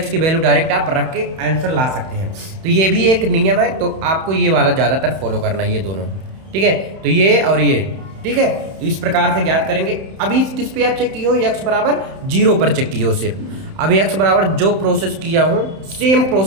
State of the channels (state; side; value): late; left; 31 ms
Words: की वैल्यू डायरेक्ट आप रख के आंसर ला सकते हैं। तो ये भी एक नियम है, तो आपको ये वाला ज़्यादातर फॉलो करना है, ये दोनों, ठीक है। तो ये और ये, ठीक है, तो इस प्रकार से ज्ञात करेंगे। अभी किस पे आप चेक किए हो, x बराबर 0 पर चेक किए हो सिर्फ। अभी x बराबर जो प्रोसेस किया हूँ सेम